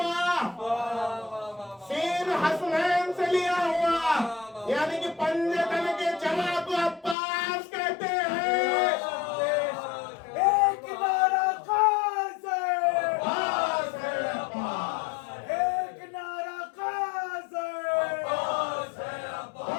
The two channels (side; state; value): right; drops out; at 7.2 s